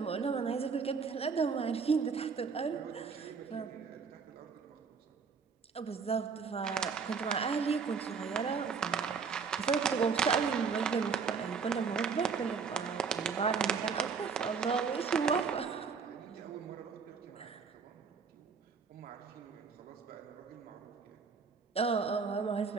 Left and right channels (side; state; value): left; quieter; 5.6 dB